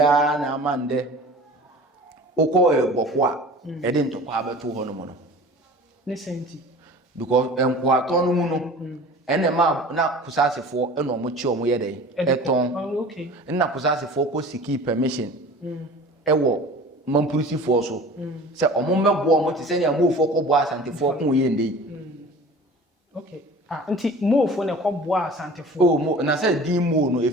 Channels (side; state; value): both; normal; correlation 0.41